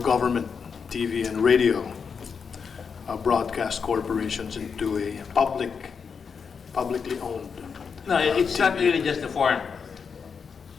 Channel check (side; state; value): right; quieter; 6.0 dB